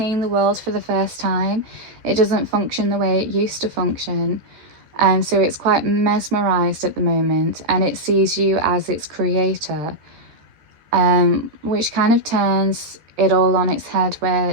the world for the first time. It doesn't function the way it used to function. And so it's quite mesmerized at the moment, and it sees you as its creator, which kind of turns it all on its head, where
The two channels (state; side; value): late; left; 14 ms